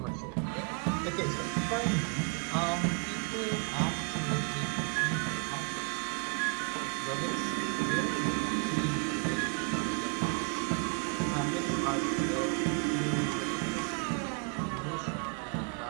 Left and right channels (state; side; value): quieter; left; 35.6 dB